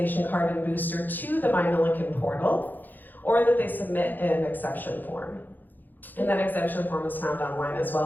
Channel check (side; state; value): right; late; 0.087 ms